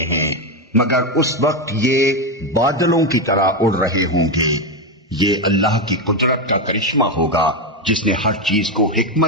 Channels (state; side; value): normal; both; correlation 0.09